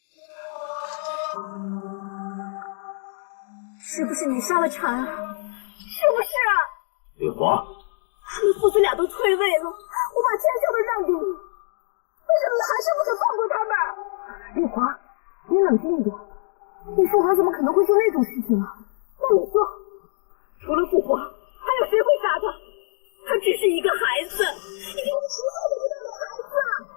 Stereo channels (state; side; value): silent; right; digital silence